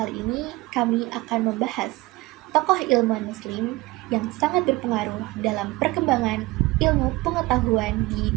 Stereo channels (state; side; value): quieter; left; 20.8 dB